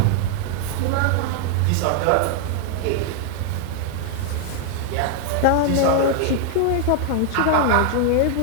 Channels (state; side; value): different; both; correlation 0.00